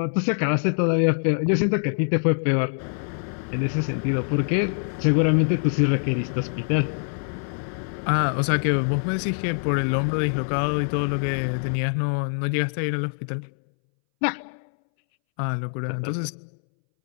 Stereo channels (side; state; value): right; silent; 62 dB below the other